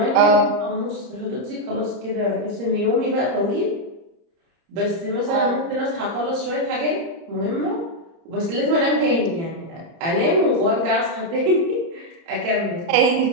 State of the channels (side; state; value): left; late; 30 ms